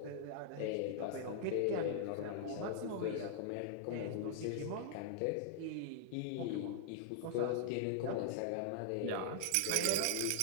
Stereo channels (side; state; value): both; different; correlation -0.01